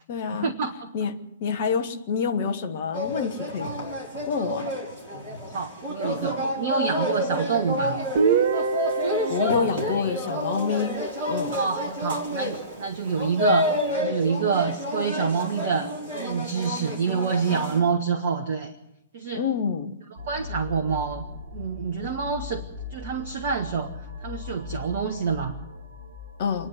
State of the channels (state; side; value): inverted; both; correlation -0.41